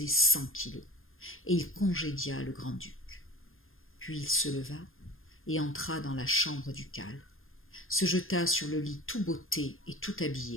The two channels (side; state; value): right; late; 0.60 ms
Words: 100 kilos, et il congédia le grand-duc. Puis il se leva et entra dans la chambre ducale, se jeta sur le lit tout botté et tout